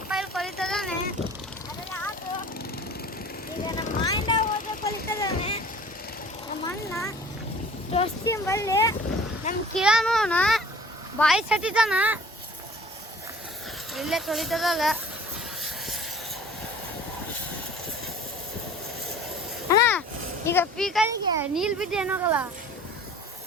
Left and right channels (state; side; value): normal; both; correlation 0.47